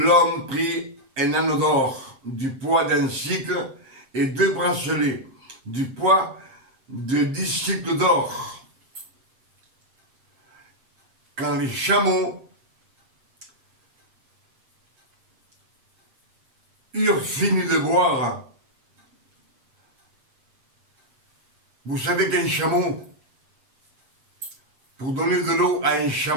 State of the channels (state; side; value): late; left; 7.6 ms